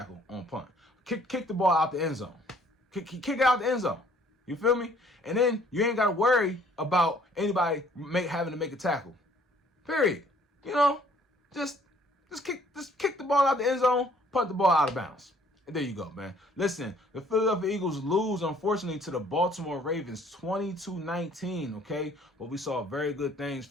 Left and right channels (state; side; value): normal; both; correlation 0.59